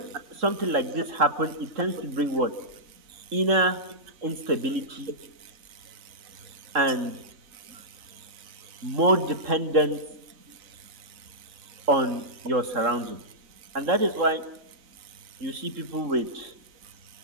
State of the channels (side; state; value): left; late; 3.9 ms